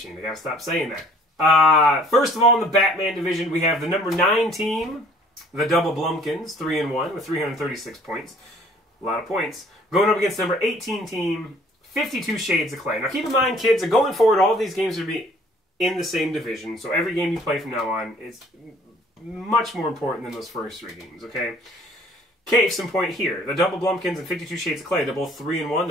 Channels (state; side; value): normal; both; correlation 0.56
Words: I gotta stop saying that. First of all, in the Batman division, we have the number 9 team, the Double Blumpkins, 3-1 with 336 points. A lot of points. Going up against the number 18 team, 52 Shades of Clay. Now keep in mind, kids, that going forward, all of these games are going to be in the same division. So every game you play from now on is much more important than those first 3 games, okay? Case in point here. The Double Blumpkins and 52 Shades of Clay, they're both 3-1.